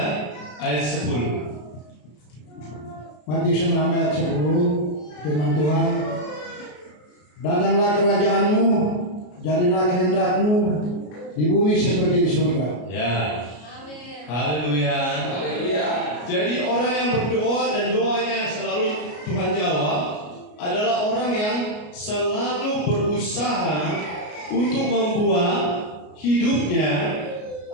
ayat 10. Matius 6 ayat 10, firman Tuhan, datanglah kerajaanmu, jadilah kehendakmu di bumi seperti di surga. Ya. Haleluya. Haleluya. Jadi orang yang berdoa dan doanya selalu Tuhan jawab adalah orang yang selalu berusaha untuk membuat hidupnya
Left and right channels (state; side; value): late; right; 33 ms